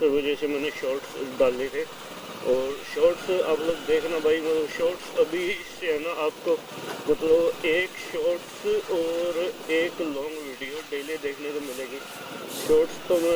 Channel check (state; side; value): identical; both; correlation 1.00